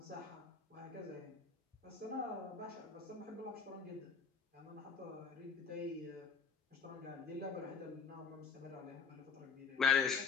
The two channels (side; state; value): right; quieter; 5.9 dB